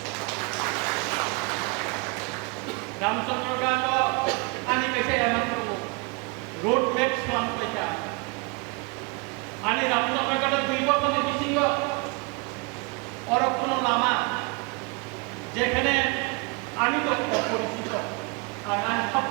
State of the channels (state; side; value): quieter; left; 29.9 dB